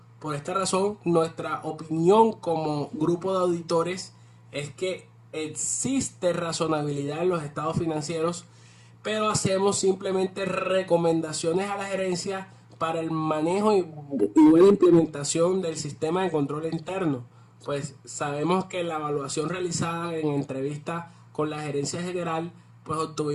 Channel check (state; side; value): identical; both; correlation 1.00